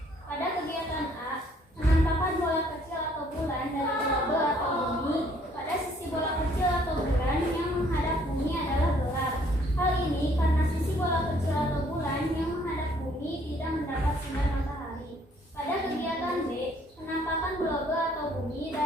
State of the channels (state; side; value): normal; both; correlation 0.63